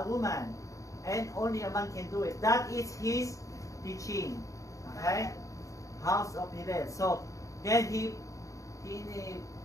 woman, and only a man can do it. That is his teaching. Okay, House of Hillel. So then he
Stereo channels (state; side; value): late; right; 0.16 ms